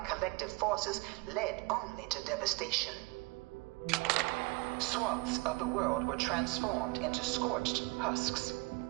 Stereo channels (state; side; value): quieter; left; 26.4 dB